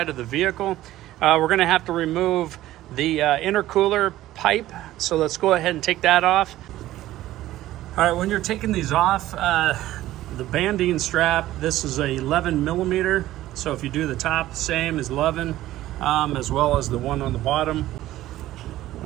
of the vehicle. We're gonna have to remove the intercooler pipe. So let's go ahead and take that off. All right, when you're taking these off, the banding strap, this is a 11 millimeter. So if you do the top, same as 11, as well as the one on the bottom.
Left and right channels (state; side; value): quieter; left; 14.9 dB